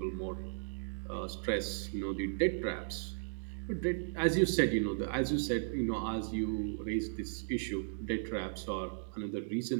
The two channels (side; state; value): left; silent; digital silence